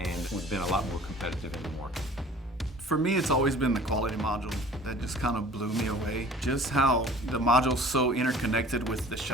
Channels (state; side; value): normal; both; correlation 0.48